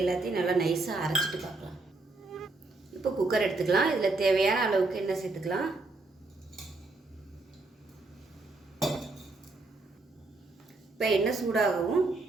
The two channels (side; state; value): left; quieter; 3.3 dB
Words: எல்லாத்தையும் நல்லா நைஸாக அரைச்சிட்டு பார்க்கலாம். இப்போ குக்கர் எடுத்துக்கலாம். இதில் தேவையான அளவுக்கு எண்ணெய் சேர்த்துக்கலாம். இப்போ எண்ணெய் சூடாகவும்